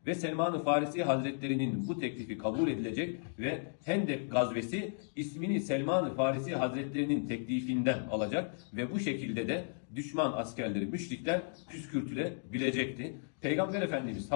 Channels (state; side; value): silent; right; digital silence